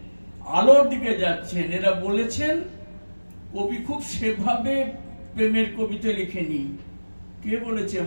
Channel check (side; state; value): both; inverted; correlation -1.00